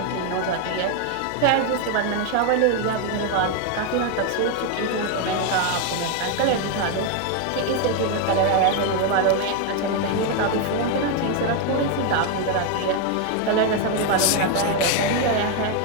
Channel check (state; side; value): different; both; correlation 0.01